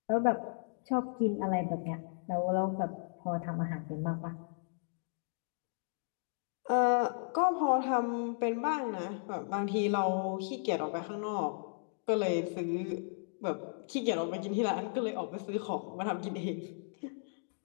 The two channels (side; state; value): right; silent; digital silence